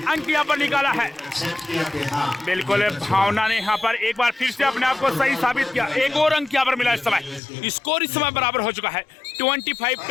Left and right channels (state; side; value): drops out; right; at 7.4 s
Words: अंक यहाँ पर निकाला है। बिल्कुल भावना ने यहाँ पर एक बार फिर से अपने आप को सही साबित किया। 1 और अंक यहाँ पर मिला इस समय। स्कोर इस समय बराबर हो चुका है